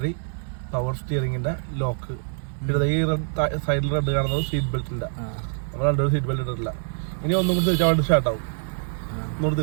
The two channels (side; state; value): left; silent; digital silence